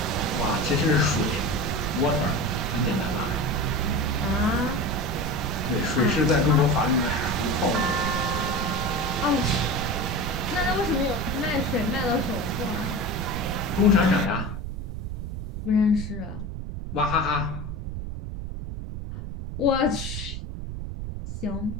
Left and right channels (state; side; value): noise; right; rumble, 6 dB below the sound